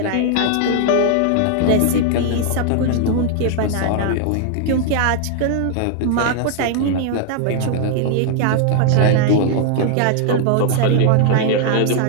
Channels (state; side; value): different; both; correlation 0.00